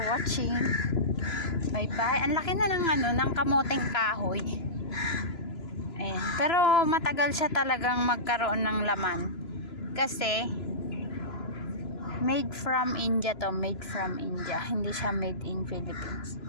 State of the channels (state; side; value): late; right; 3.0 ms